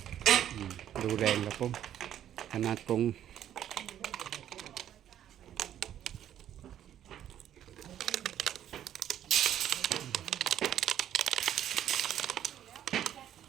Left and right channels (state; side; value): quieter; left; 10.8 dB